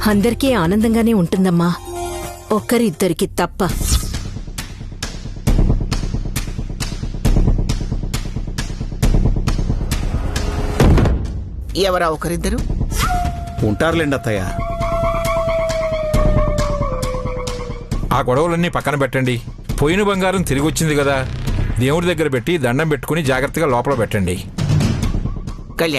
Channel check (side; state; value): both; identical; correlation 1.00